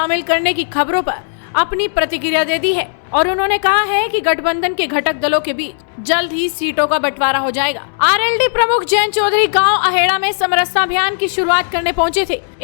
करने की खबरों पर अपनी प्रतिक्रिया दे दी है और उन्होंने कहा है कि गठबंधन के घटक दलों के बीच जल्द ही सीटों का बंटवारा हो जाएगा। आरएलडी प्रमुख जयंत चौधरी गांव अहेड़ा में समरसता अभियान की शुरुआत करने पहुंचे थे।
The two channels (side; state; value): right; silent; 69 dB below the other